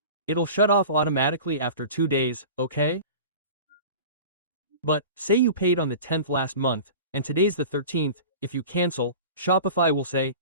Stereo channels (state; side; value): inverted; both; correlation -0.36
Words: It'll shut off automatically after 2 days, okay? But, say you paid on the 10th last month, and today's the 13th, if you cancel, Shopify will say,